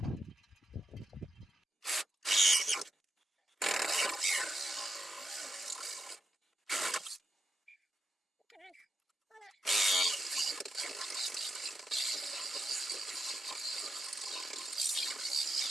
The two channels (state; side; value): normal; both; correlation 0.84